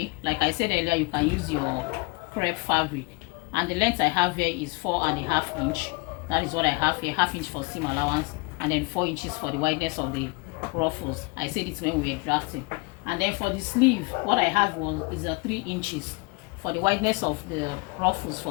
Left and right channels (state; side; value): quieter; right; 28.1 dB